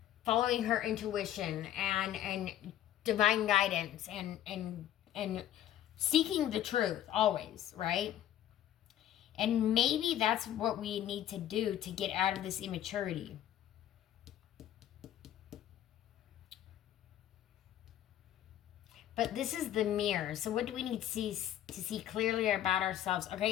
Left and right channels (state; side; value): quieter; right; 11.7 dB